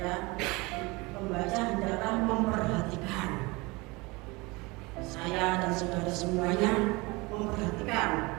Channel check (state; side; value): quieter; left; 24.7 dB